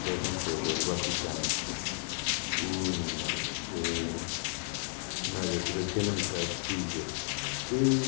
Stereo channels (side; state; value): right; silent; 56 dB below the other